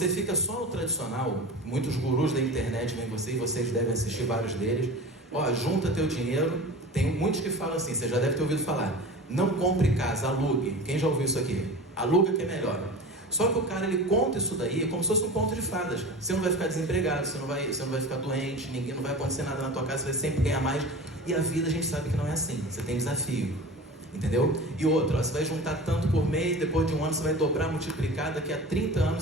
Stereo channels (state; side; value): normal; both; correlation 0.34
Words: fica só no tradicional, muitos gurus da internet vêm você, e vocês devem assistir vários deles. Ó, junta teu dinheiro. Tem muitos que falam assim, você já deve ter ouvido falar. Não compre casa, alugue. Quem já ouviu isso aqui? Aluga que é melhor. Só que o cara, ele conta isso daí como se fosse um conto de fadas. Você não vai ficar desempregado, você não vai ficar doente, não vai acontecer nada na tua casa, você vai sempre ganhar mais. E a vida a gente sabe que não é assim, você tem desafio. Entendeu? E outro, ó, você vai juntar tanto por mês, depois de um ano você vai dobrar, multiplicar, daqui a 30